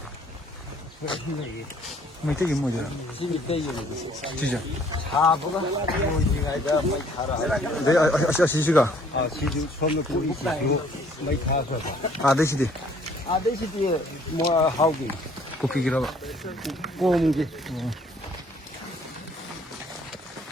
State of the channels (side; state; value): both; normal; correlation 0.60